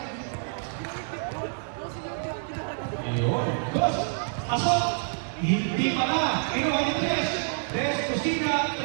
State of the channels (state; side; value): silent; left; digital silence